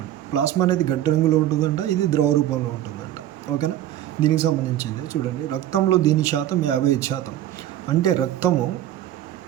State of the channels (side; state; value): left; quieter; 12.4 dB